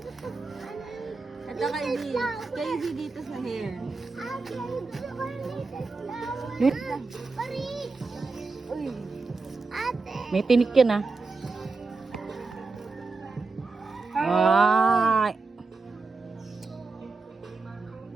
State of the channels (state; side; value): quieter; left; 4.0 dB